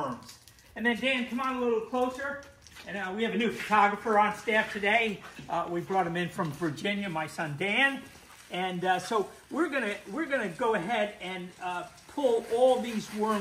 And then Dan, come on a little closer. And we have a new photographer on staff today. We brought him in from Virginia, my son Dan. And so we're gonna go ahead and pull all these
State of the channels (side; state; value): both; identical; correlation 1.00